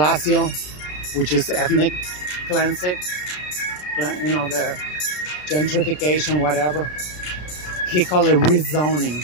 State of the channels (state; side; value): late; right; 33 ms